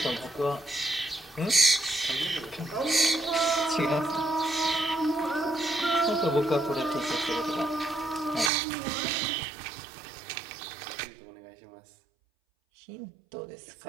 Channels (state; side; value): drops out; left; at 8.5 s